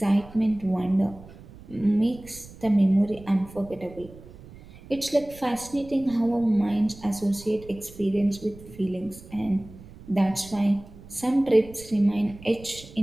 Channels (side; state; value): right; noise; rumble, 19 dB below the sound